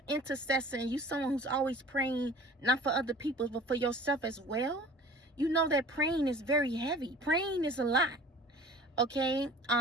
intercessor and you're someone who's always praying not for other people but for yourself as well, you know that praying is very heavy. Praying is a lot. Okay?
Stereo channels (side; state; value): both; normal; correlation 0.44